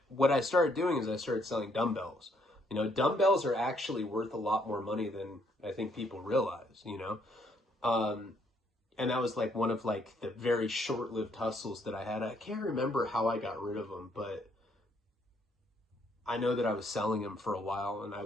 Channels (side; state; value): both; normal; correlation 0.69